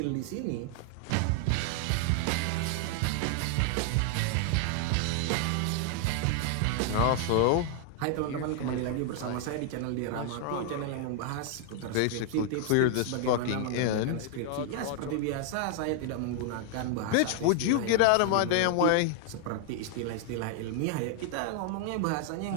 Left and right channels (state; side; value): different; both; correlation 0.00